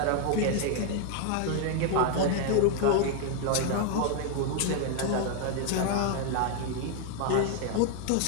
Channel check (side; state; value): both; different; correlation 0.00